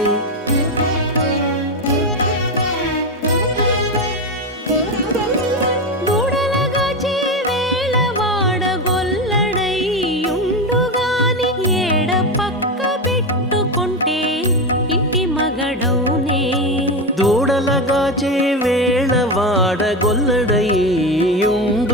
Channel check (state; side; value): normal; both; correlation 0.16